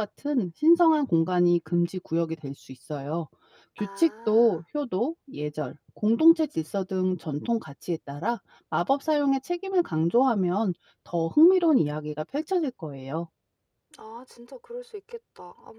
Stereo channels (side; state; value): both; identical; correlation 1.00